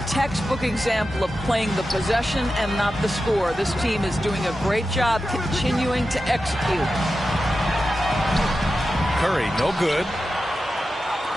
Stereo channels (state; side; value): normal; both; correlation 0.91